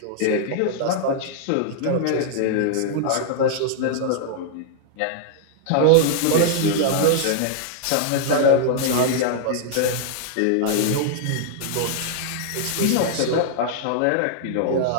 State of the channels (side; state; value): both; different; correlation -0.01